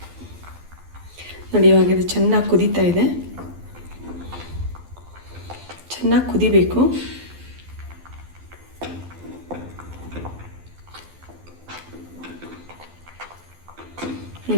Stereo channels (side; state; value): left; late; 12 ms